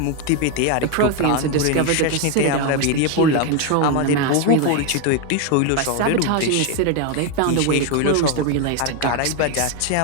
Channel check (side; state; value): both; different; correlation 0.02